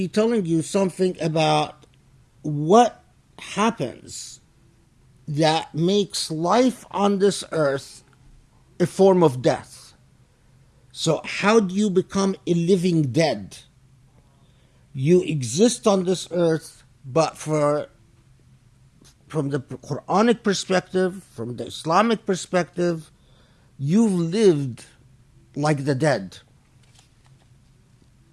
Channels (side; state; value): both; identical; correlation 1.00